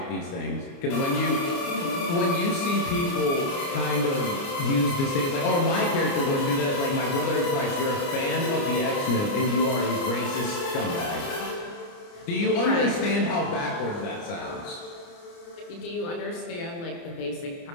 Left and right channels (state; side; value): late; right; 29 ms